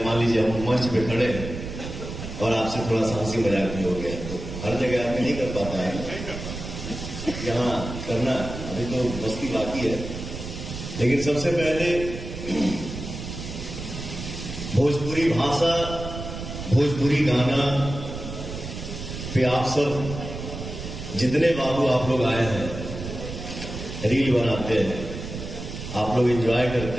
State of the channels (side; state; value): right; noise; rumble, 8 dB below the sound